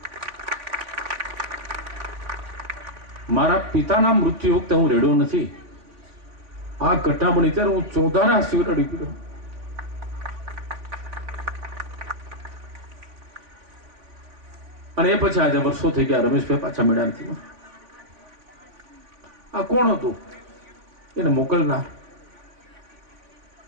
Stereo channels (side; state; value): left; late; 3.7 ms